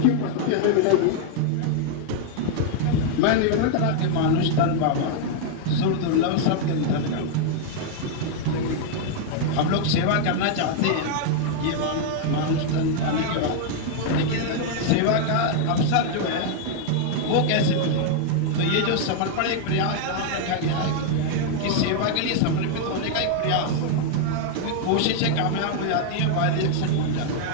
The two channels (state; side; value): different; both; correlation 0.00